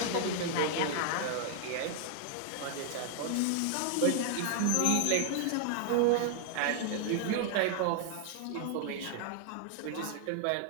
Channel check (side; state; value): both; different; correlation 0.00